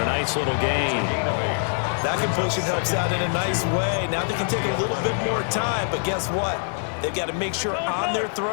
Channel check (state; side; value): silent; right; digital silence